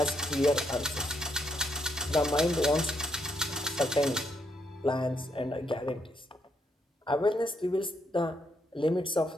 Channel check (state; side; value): normal; both; correlation 0.76